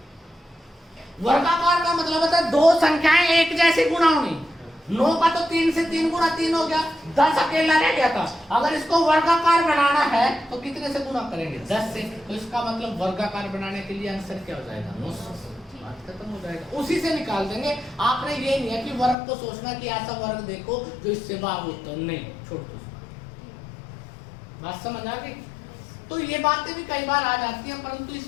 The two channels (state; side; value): drops out; right; at 19.2 s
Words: वर्गाकार का मतलब होता है दो संख्याएं एक जैसी गुणा होनी। 9 का तो 3 से 3 गुणा 3 हो गया, 10 अकेला रह गया था। अगर इसको वर्गाकार बनाना है तो कितने से गुणा करेंगे, 10 से। तो इसका मतलब वर्गाकार बनाने के लिए आंसर क्या हो जाएगा, 900। बात खत्म हो जाएगा, उसी से निकाल देंगे। आपने ये नहीं है कि वर्ग को सोचना कि ऐसा वर्ग देखो जो इससे भाग होता है, नहीं, छोड़ दो। बात समझ आ गई। तो ये बातें भी कई बार आ जाती हैं, परंतु